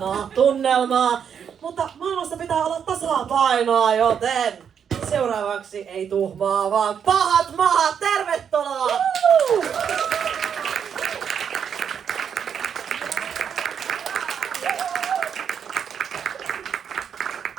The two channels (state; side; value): quieter; left; 7.7 dB